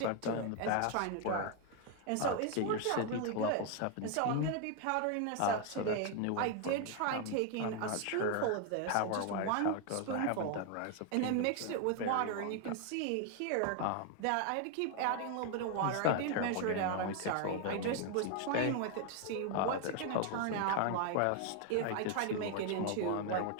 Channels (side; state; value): both; different; correlation 0.01